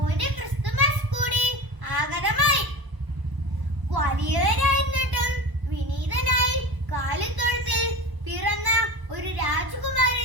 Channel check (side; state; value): left; late; 1.0 ms